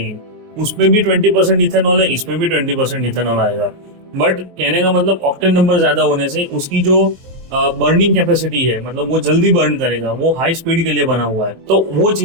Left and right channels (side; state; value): left; late; 23 ms